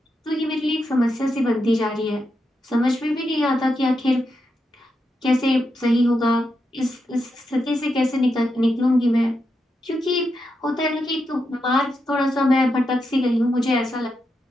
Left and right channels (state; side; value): normal; both; correlation 0.85